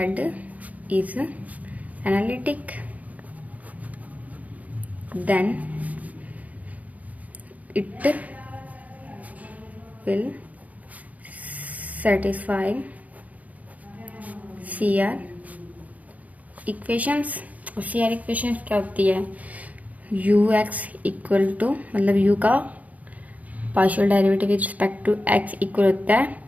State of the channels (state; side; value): late; left; 0.074 ms